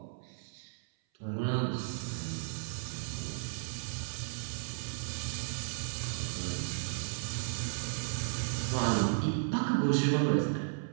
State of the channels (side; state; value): left; silent; 55 dB below the other